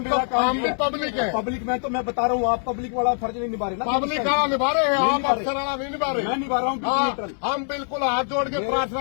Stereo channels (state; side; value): silent; right; 63 dB below the other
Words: काम हम भी है। पब्लिक है। पब्लिक में तो मैं बता रहा हूँ, आप पब्लिक वाला फर्ज नहीं निभा रहे ना। पब्लिक कहाँ निभा रहे हैं? नहीं आप निभा रहे। अफसर वाला नहीं निभा रहे। मैं निभा रहा हूँ हाँ, न्यूट्रल। हम बिल्कुल हाथ जोड़ के